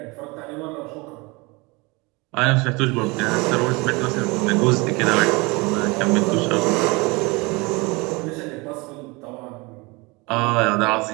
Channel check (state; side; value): quieter; left; 26.0 dB